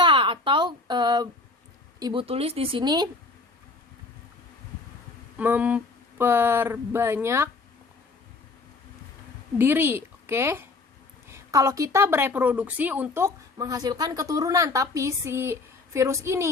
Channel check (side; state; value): right; quieter; 3.6 dB